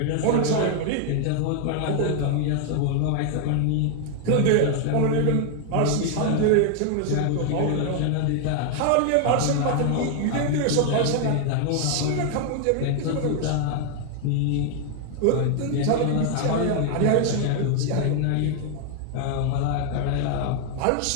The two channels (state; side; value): different; both; correlation 0.00